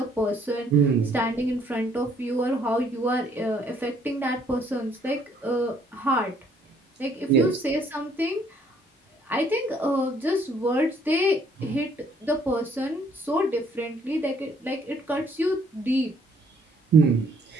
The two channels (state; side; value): normal; both; correlation 0.64